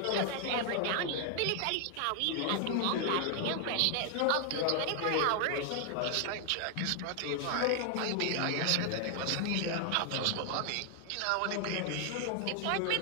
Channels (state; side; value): different; both; correlation 0.00